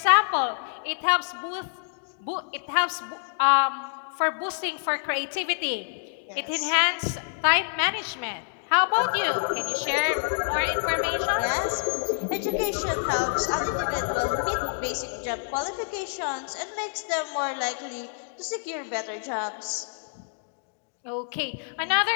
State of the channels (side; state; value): right; silent; digital silence